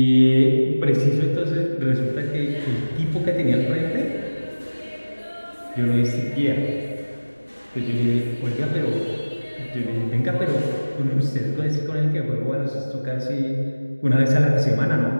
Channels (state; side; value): inverted; both; correlation -1.00